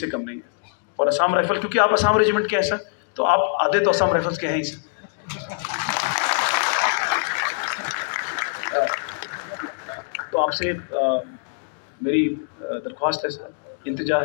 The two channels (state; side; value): silent; right; digital silence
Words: कम नहीं है। और असम राइफल, क्योंकि आप असम रेजिमेंट के हैं सर, तो आप आधे तो असम राइफल्स के हैं ही सर। तो आपसे मेरी दरख्वास्त है सर, इंतजा